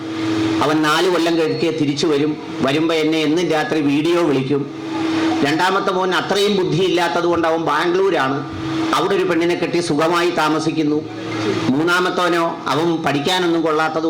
അവൻ 4 കൊല്ലം കഴിഞ്ഞ് തിരിച്ചു വരുമ്പോൾ എന്നെ എന്നും രാത്രി വീഡിയോ വിളിക്കും. രണ്ടാമത്തെ മോൻ അത്രയും ബുദ്ധിയില്ലാത്തത് കൊണ്ട് അവൻ ബാംഗ്ലൂരാണ്, അവിടെ ഒരു പെണ്ണിനെ കെട്ടി സുഖമായി താമസിക്കുന്നു. മൂന്നാമത്തവനോ അവൻ പഠിക്കാനൊന്നും കൊള്ളാത്തത്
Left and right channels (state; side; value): identical; both; correlation 1.00